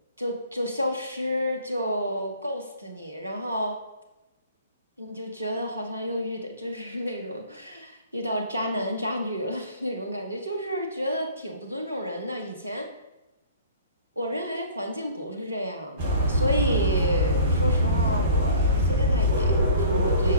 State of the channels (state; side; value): inverted; both; correlation -0.47